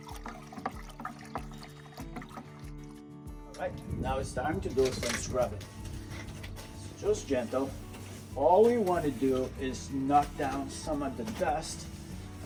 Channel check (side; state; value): both; identical; correlation 1.00